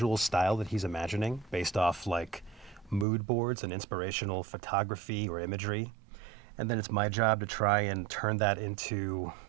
style that he's imagining based off like mood boards and inspirational photography or imagery. And then it's my job to try and turn that into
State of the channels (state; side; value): drops out; left; at 3.1 s